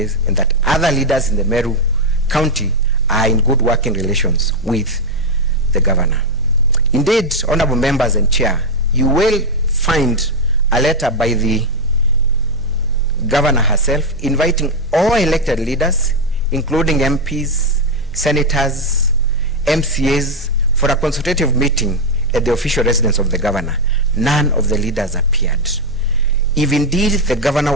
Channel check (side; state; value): both; normal; correlation 0.03